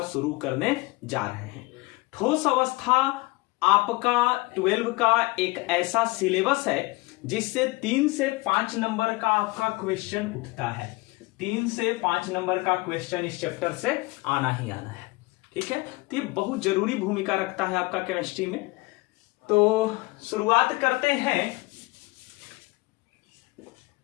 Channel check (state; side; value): quieter; right; 22.7 dB